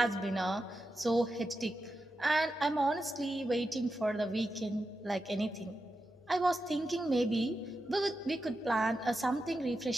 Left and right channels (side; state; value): both; normal; correlation 0.89